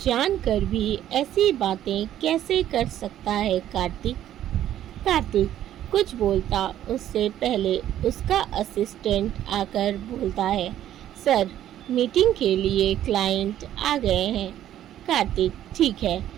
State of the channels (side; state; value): left; quieter; 11.8 dB